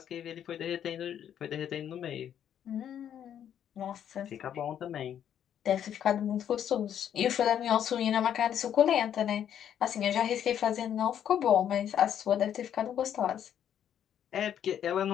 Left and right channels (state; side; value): quieter; right; 9.6 dB